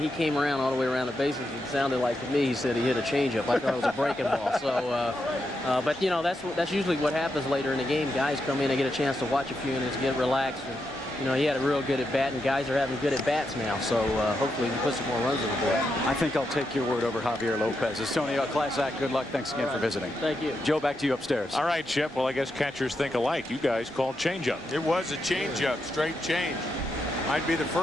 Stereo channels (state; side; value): normal; both; correlation 0.84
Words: he came around all the way around the bases. It sounded like to me he said he hit a changeup. I thought it was a breaking ball. So, but you know, that's usually what happens later in the game. Guys come in and get a chance to watch a few innings, get relaxed. And, you know, he had a real good at bat, and guys are having good at bats now. So hopefully we can put some more runs on the board. I think I'll take your word over Javier Lopez. It's Tony, a class act. Good luck. Thanks again for visiting. Thank you. Joe, back to you upstairs. All right, Chip. Well, I guess catchers think alike. You guys called changeup. It was a changeup, straight change. Might be the